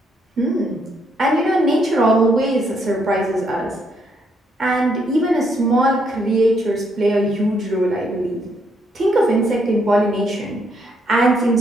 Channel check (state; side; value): normal; both; correlation 0.73